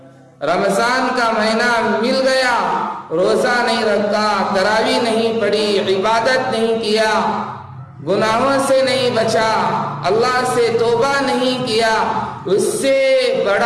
رمضان کا مہینہ مل گیا، روزہ نہیں رکھا، تراویح نہیں پڑھی، عبادت نہیں کیا، گناہوں سے نہیں بچا، اللہ سے توبہ نہیں کیا، اس سے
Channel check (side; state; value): both; identical; correlation 1.00